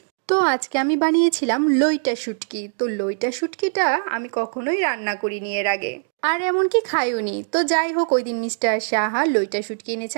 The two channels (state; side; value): silent; left; digital silence